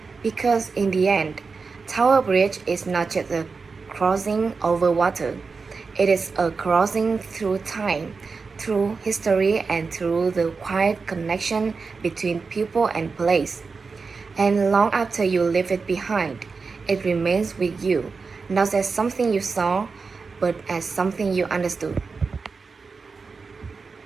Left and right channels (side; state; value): left; quieter; 4.7 dB